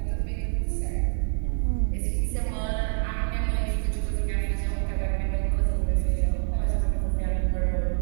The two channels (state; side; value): silent; left; digital silence